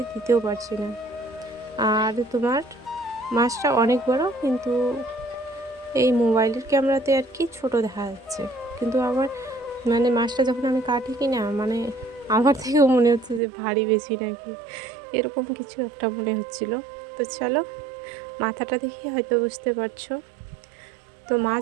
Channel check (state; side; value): drops out; left; at 13.4 s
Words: দিতেও পারছি না। আর তোমার মাছটা অনেক বড়, কিন্তু এই মোবাইলের ক্যামেরাতে আর কি ছোট দেখা যাচ্ছে, কিন্তু আবার মানে মাছটা যখন আমি কাটি কি না, মানে আমার থেকেও মনে হচ্ছে যে ভারী বেশি নাকি, এরকম কিছু একটা মনে হচ্ছিল। তো চলো, মাথাটা দেখে হয়তো বুঝতে পারছো। তো